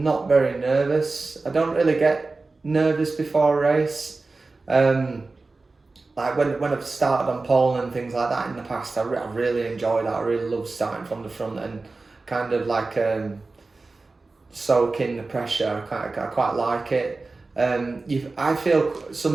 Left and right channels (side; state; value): left; quieter; 3.6 dB